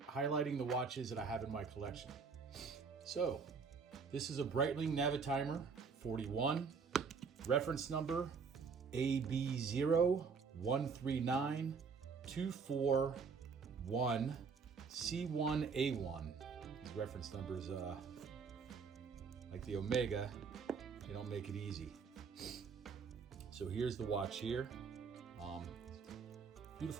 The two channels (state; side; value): quieter; left; 5.4 dB